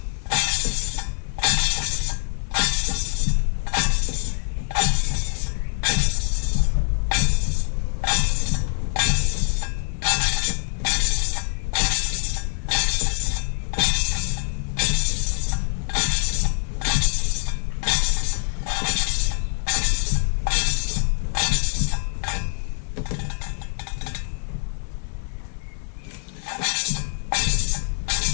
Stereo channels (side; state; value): right; silent; 56 dB below the other